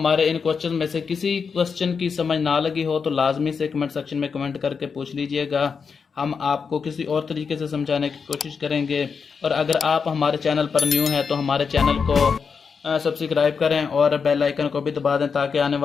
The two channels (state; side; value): quieter; right; 5.7 dB